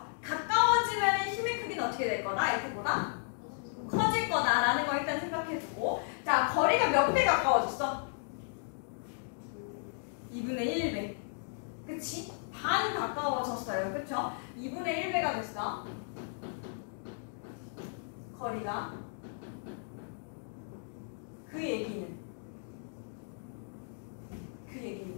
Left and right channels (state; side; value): silent; right; digital silence